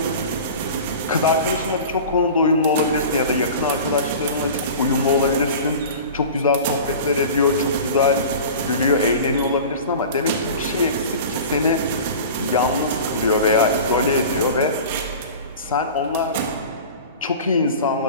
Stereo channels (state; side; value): inverted; both; correlation -0.37